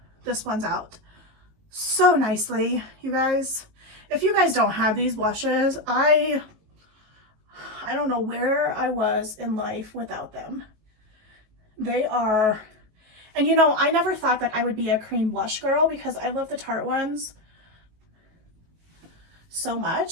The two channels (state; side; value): late; left; 19 ms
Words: This one's out so nicely, you guys. If you guys don't have these blushes, I don't know where I was in life without them. They are, and you know, I never thought that I would be a cream blush girl because I love the Tarte ones so